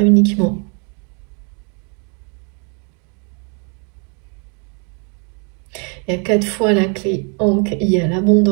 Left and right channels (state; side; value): quieter; left; 37.4 dB